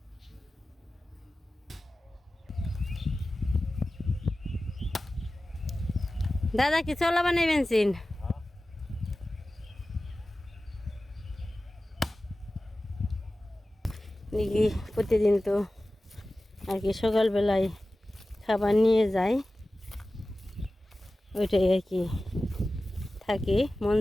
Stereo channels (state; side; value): normal; both; correlation 0.96